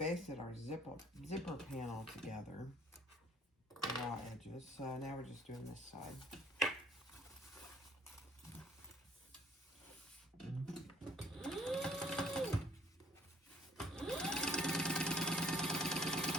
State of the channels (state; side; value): normal; both; correlation 0.61